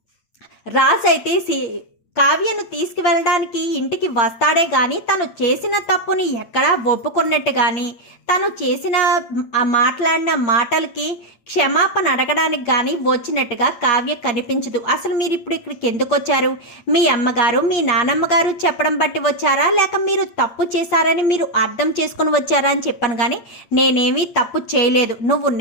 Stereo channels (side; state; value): right; late; 8.7 ms